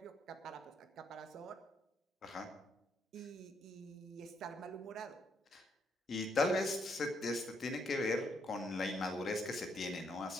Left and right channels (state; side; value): normal; both; correlation 0.74